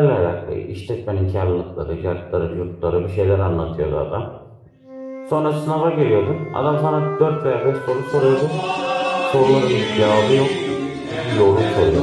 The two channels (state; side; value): identical; both; correlation 1.00